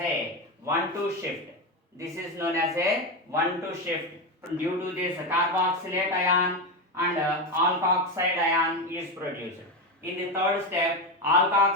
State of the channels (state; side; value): normal; both; correlation 0.14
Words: 1-2 shift. This is known as a 1-2 shift. Due to this carboxylate ion and alkoxide ion is produced. In the third step,